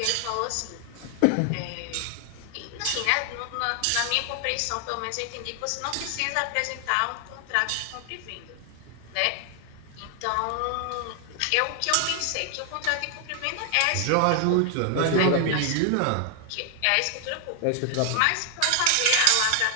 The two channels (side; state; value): both; different; correlation 0.00